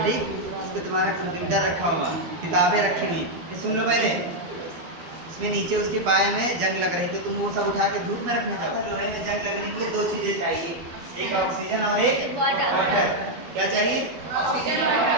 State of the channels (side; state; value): left; late; 12 ms